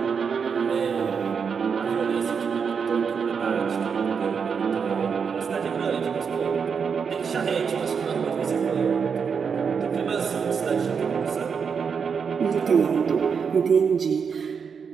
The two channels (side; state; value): left; quieter; 6.3 dB